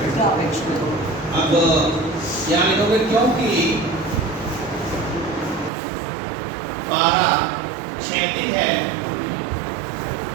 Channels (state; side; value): drops out; left; at 5.7 s